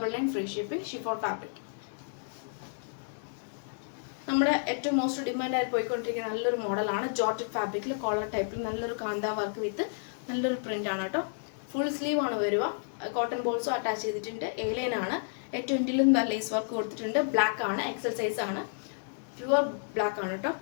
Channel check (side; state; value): right; silent; digital silence